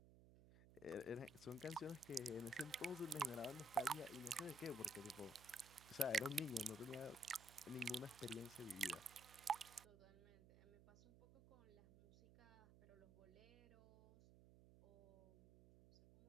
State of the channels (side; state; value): right; noise; hum, 19 dB below the sound